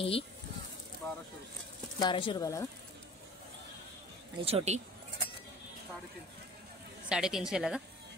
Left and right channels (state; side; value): normal; both; correlation 0.44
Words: ही 1200 रुपयाला का? आणि छोटी 350 ला का?